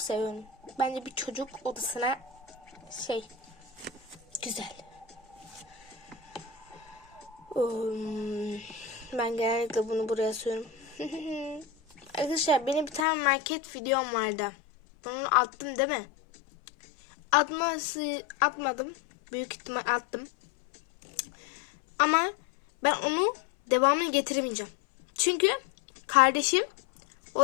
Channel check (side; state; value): right; drops out; at 13.1 s